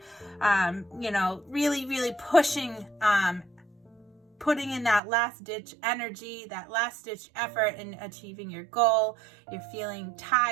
really, really pushing, putting in that last ditch energy, that last ditch effort in achieving your goal. You're feeling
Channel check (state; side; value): drops out; left; at 5.0 s